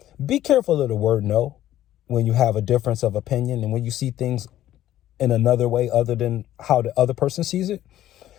be careful of the word no when you have a difference of opinion and when you see things in another way other than how the other person sees it.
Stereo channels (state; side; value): quieter; right; 13.0 dB